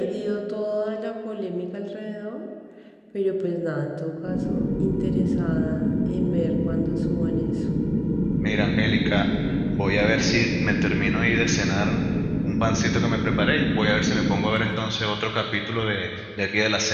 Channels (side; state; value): both; identical; correlation 1.00